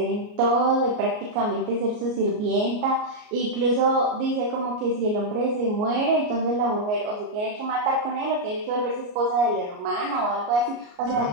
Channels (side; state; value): left; late; 33 ms